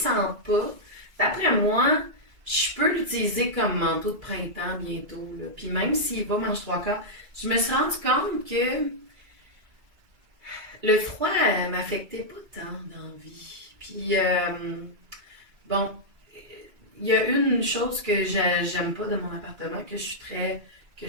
pas, d'après moi, je peux l'utiliser comme manteau de printemps bientôt, là. Puis même s'il va mange trois quarts, je me suis rendu compte que le froid m'affectait pas tant dans la vie. Puis, bon, il y a une chose que j'aime pas de mon appartement, que je suis très, que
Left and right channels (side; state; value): left; late; 2.4 ms